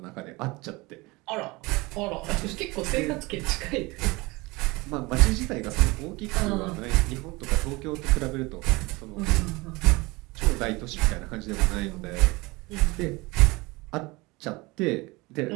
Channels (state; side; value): quieter; left; 23.4 dB